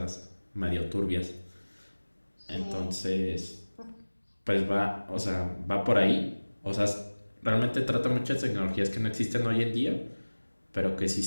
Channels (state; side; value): inverted; both; correlation -1.00